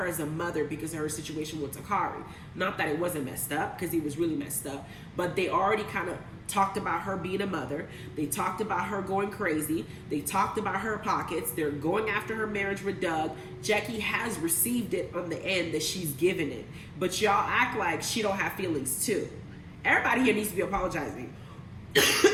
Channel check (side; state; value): both; identical; correlation 1.00